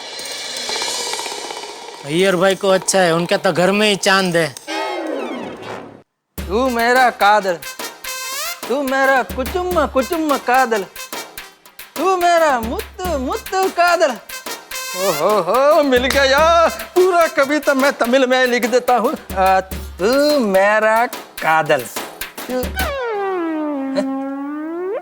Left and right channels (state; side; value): identical; both; correlation 1.00